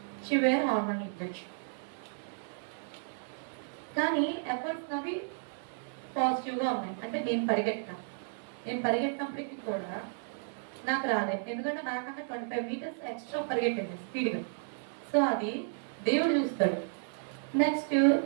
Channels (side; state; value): left; silent; digital silence